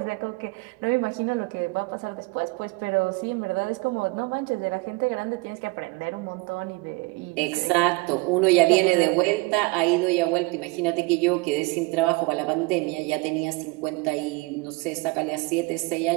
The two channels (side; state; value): left; quieter; 25.2 dB